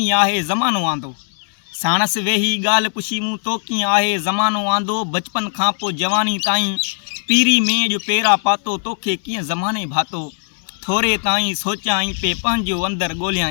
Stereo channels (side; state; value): right; silent; 64 dB below the other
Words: आहे ज़मानो आंदो। साणस वेही ॻाल्हि पुछी मूं तो कीअं आहे ज़मानो आंदो। बचपन खां पोइ जवानी ताईं पीरी में जो पेरा पातो तोखे कीअं ज़माने भातो। थोरे ताईं सोचियाईं पे पंहिंजो अंदरि